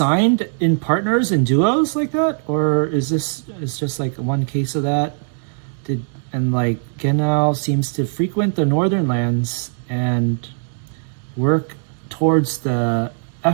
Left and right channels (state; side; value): silent; left; 66 dB below the other